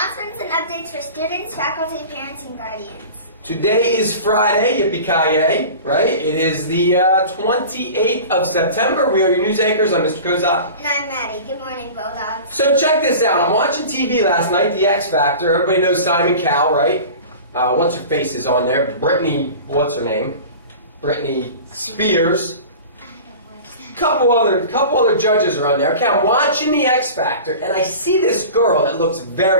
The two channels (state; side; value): inverted; both; correlation -0.37